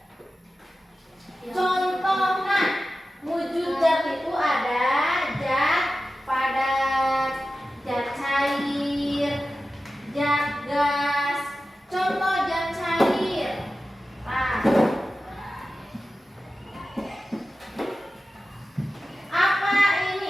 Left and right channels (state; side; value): normal; both; correlation 0.94